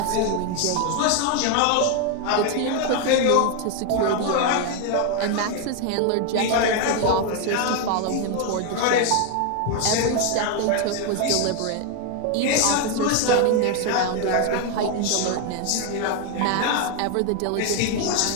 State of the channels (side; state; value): both; different; correlation 0.01